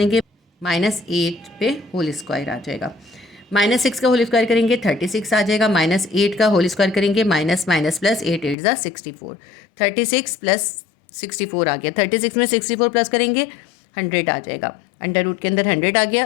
-8 पे होल स्क्वायर आ जाएगा। -6 का होल स्क्वायर करेंगे 36 आ जाएगा। -8 का होल स्क्वायर करेंगे, माइनस माइनस प्लस 8 8 ज़ा 64, 36 प्लस 64 आ गया। 36 में 64 प्लस करेंगे 100 आ जाएगा। अंडर रूट के अंदर 100 आ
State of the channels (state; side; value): drops out; right; at 8.6 s